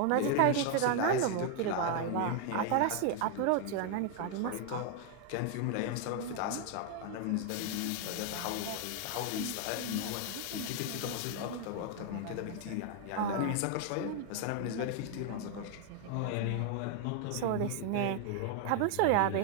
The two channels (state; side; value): different; both; correlation 0.00